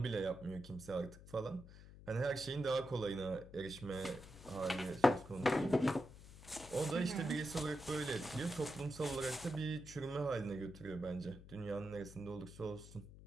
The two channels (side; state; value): left; noise; hum, 17 dB below the sound